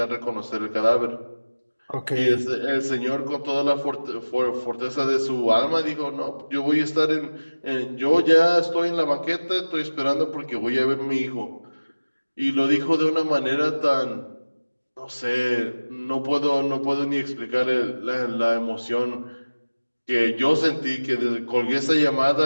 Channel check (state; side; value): inverted; both; correlation -1.00